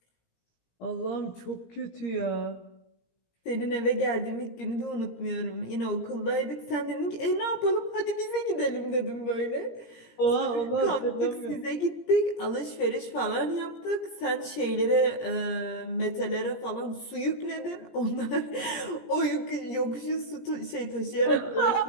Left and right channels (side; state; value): right; late; 17 ms